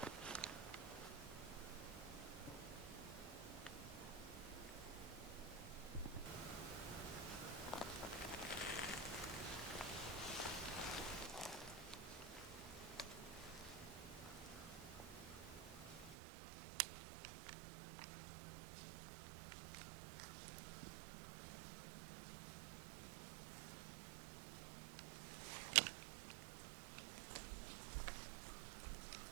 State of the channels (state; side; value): drops out; left; at 16.2 s